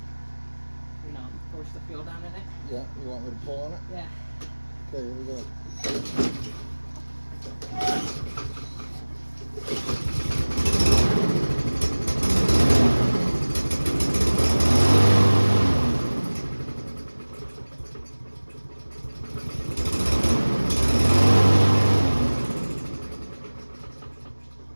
You know, force the fuel down in it. Yeah, you want me to pull on it? Yeah. Okay, here we go.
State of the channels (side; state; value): both; inverted; correlation -1.00